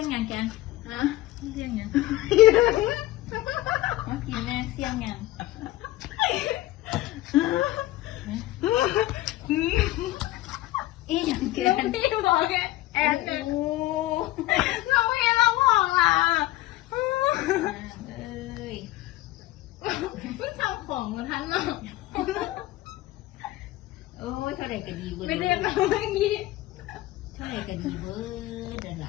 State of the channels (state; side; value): quieter; right; 16.9 dB